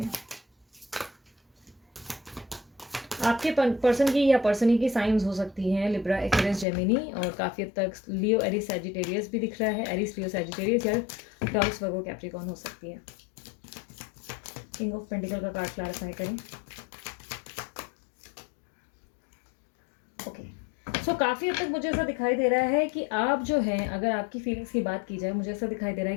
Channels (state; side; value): drops out; right; at 6.7 s